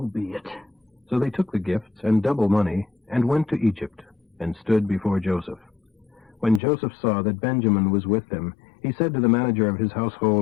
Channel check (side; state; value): right; drops out; at 6.6 s